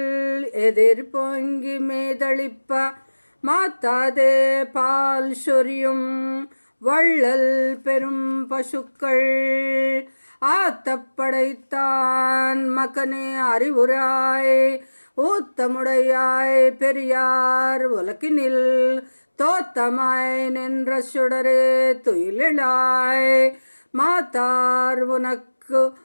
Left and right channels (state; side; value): inverted; both; correlation -1.00